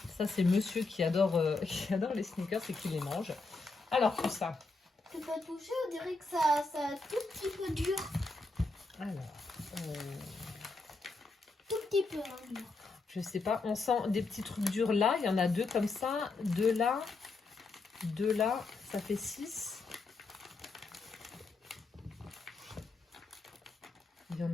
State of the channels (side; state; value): right; quieter; 3.7 dB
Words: Ça, c'est monsieur qui adore les sneakers et qui les mange. Alors, tout ça. Tu peux toucher, on dirait que ça un tout petit peu dur. Alors, Tout petit peu dur. je sais pas, on sent des petits trucs durs là. Il y en a 2 comme ça, 2 là, 2 là. Ça fait 6. Il y en